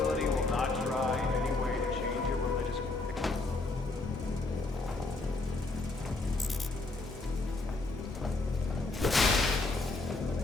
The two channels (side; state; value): right; quieter; 3.3 dB